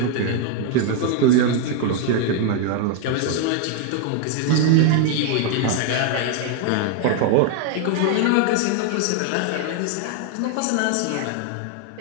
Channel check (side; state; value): both; different; correlation 0.00